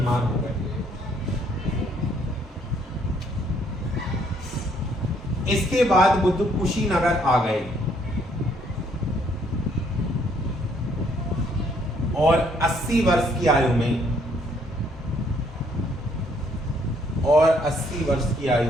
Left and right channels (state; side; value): normal; both; correlation 0.67